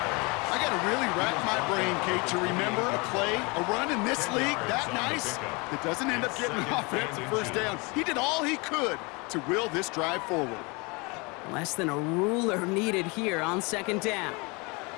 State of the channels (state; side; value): quieter; right; 28.1 dB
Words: I got to really rack my brain, Kate, to remember a play, a run in this league that nice that doesn't end up getting an offensive 1st down. He did all he could to will this drive forward. Less than a ruler needed here on 2nd down.